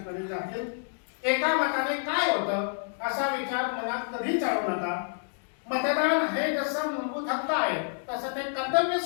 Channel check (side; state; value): right; silent; digital silence